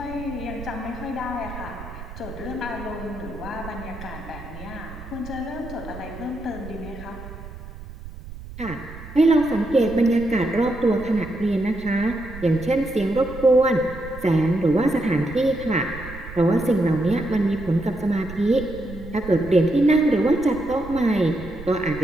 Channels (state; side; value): noise; right; rumble, 14 dB below the sound